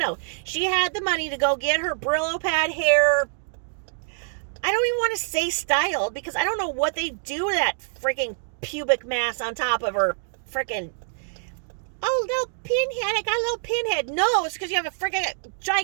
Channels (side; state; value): left; silent; digital silence